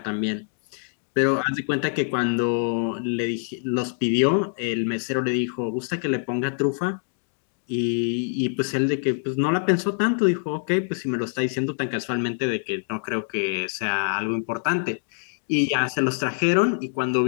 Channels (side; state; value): right; silent; digital silence